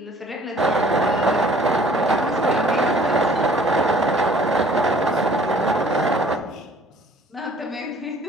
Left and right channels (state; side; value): normal; both; correlation 0.54